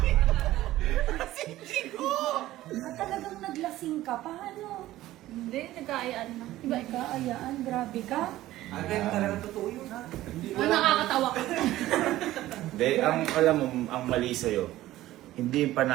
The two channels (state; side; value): quieter; left; 15.4 dB